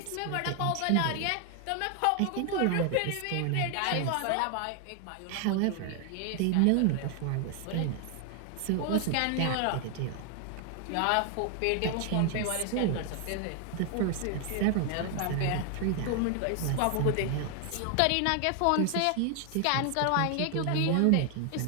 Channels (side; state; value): both; different; correlation 0.00